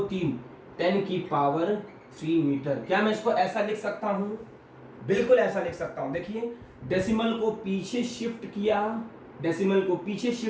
3 10 की पावर 3 मीटर। क्या मैं इसको ऐसा लिख सकता हूं? बिल्कुल ऐसा लिख सकता हूं। देखिए डेसिमल को पीछे शिफ्ट किया, डेसिमल को पीछे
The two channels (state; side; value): identical; both; correlation 1.00